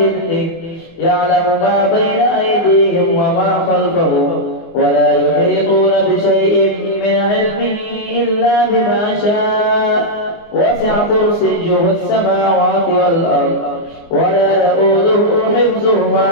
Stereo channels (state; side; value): late; right; 24 ms